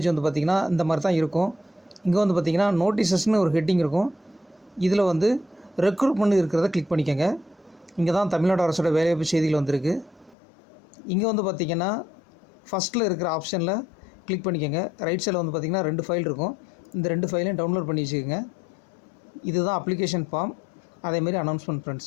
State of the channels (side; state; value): right; drops out; at 10.4 s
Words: வந்து பார்த்திங்கன்னா இந்த மாதிரி தான் இருக்கும். இங்கே வந்து பார்த்திங்கன்னா நோட்டீசஸ்னு ஒரு ஹெட்டிங் இருக்கும். இதில் வந்து ரெக்ரூட்மெண்ட் இருக்கிறத கிளிக் பண்ணிக்கோங்க. இங்கே தான் தமிழ்நாடு அரசோட வேலைவாய்ப்பு செய்திகள் வந்திருக்கு. இங்கே வந்து பார்த்திங்கன்னா ஃபஸ்ட்டில் இருக்கிற ஆப்ஷனில் கிளிக் பண்ணிக்கோங்க. ரைட் சைடில் வந்து பார்த்திங்கன்னா 2 ஃபைல் இருக்கும். இந்த 2 ஃபைலையும் டவுன்லோட் பண்ணி வச்சுக்கோங்க. இதுதான் அப்ளிகேஷன் ஃபார்ம், அதேமாரி அனௌன்ஸ்மெண்ட்.